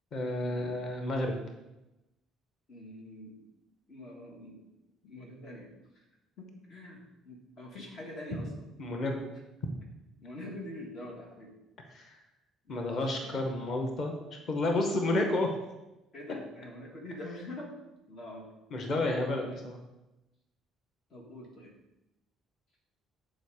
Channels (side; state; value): both; normal; correlation 0.68